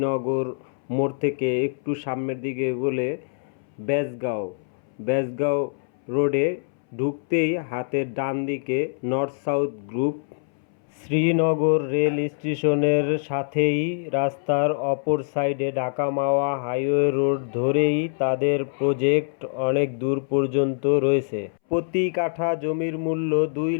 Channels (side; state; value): right; silent; 62 dB below the other